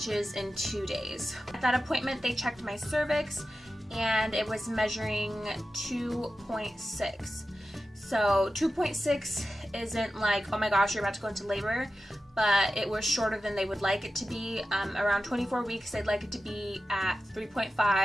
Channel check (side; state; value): both; normal; correlation 0.93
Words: is in 2 days. At that appointment, they checked my cervix and it was measuring 2.6. So 2.6 isn't oh my gosh, you're about to go into labor, but it was shorter than they would like it to be. Around 24 weeks, they'd like it to be at